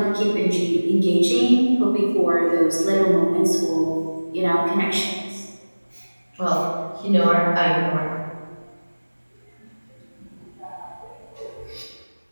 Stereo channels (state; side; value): inverted; both; correlation -1.00